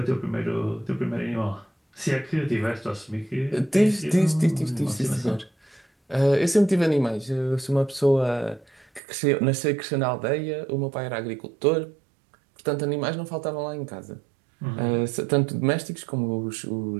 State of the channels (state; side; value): drops out; left; at 9.0 s